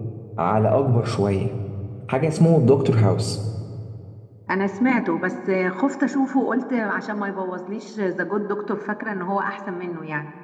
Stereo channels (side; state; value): both; identical; correlation 1.00